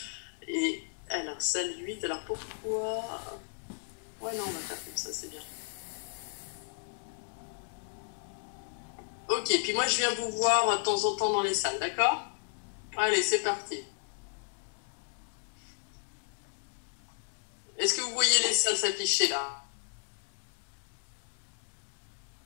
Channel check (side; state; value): right; silent; 55 dB below the other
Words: Et alors, salle 8, alors pourquoi... Ouais, non, on va faire comme ça, c'est bien. Ok, puis moi, je viens vous voir de temps en temps dans les salles, d'accord? Allez, c'est parti. Est-ce que vous voyez les salles s'afficher là?